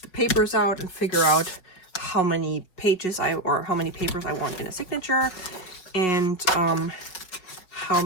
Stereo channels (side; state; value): right; late; 5.6 ms